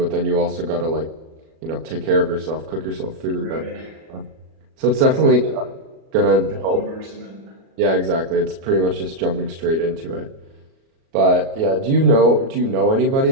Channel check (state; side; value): late; left; 37 ms